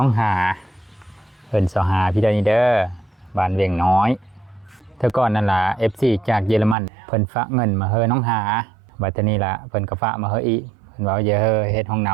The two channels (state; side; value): drops out; left; at 6.8 s